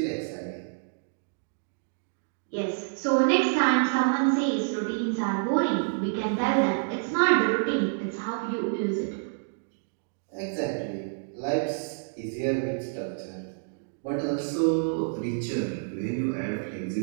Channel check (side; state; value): left; silent; digital silence